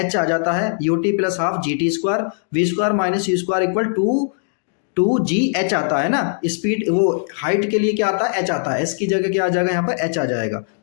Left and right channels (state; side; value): silent; right; digital silence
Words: h आ जाता है, ut plus half g t square, v square minus you square equal to g h आता है ना। स्पीड वो हाइट के लिए क्या आता है, h आता है। s की जगह क्या आ जाएगा, यहाँ पर h आ जाएगा।